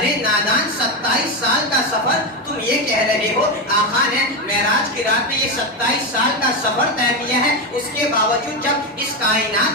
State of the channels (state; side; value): normal; both; correlation 0.12